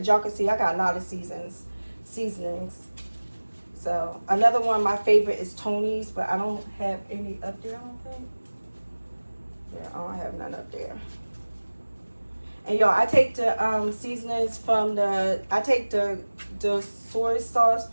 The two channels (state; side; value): inverted; both; correlation -1.00